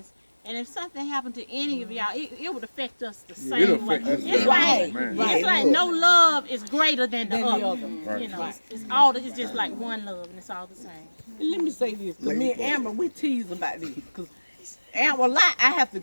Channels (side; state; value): both; inverted; correlation -1.00